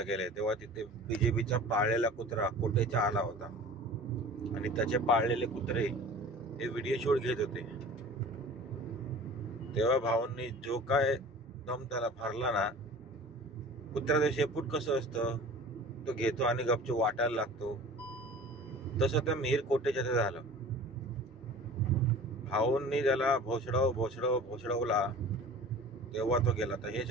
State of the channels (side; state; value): both; normal; correlation 0.41